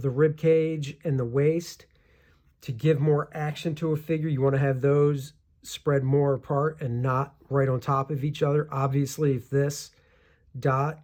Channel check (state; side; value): identical; both; correlation 1.00